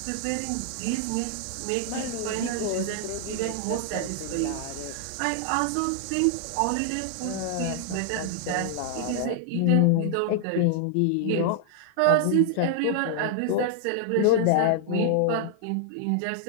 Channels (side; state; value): both; different; correlation -0.01